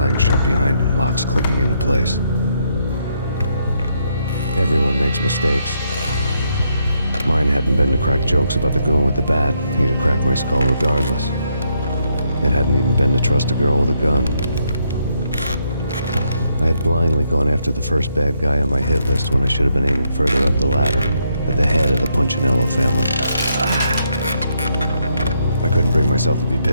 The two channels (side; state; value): both; inverted; correlation -0.76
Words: shut behind him, locks clicking into place. Everyone makes mistakes. Mine hadn't been to crack jokes about the goon with the bat. He'd have cracked my skull regardless. It hadn't even been to trust a girl with a gun. I had blindly gone after the first bad guy on my hit list when I should have been aiming further up the ladder, at the head of the Punchinello family. I couldn't bring myself to be